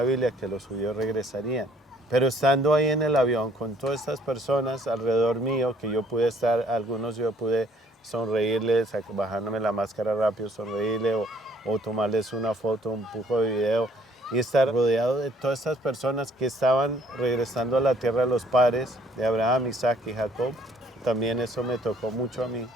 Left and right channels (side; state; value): both; normal; correlation 0.60